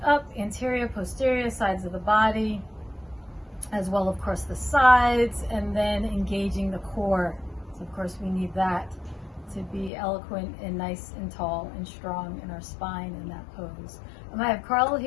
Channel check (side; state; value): right; drops out; at 9.9 s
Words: up anterior, posterior sides of the body, as well, of course, the sides, and then engaging the core. So, of course, we need that to be eloquent and nice and tall and strong in our spine in that pose. I have Carl